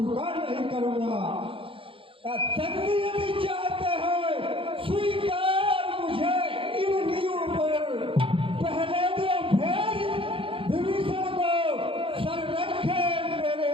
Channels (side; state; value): left; late; 0.26 ms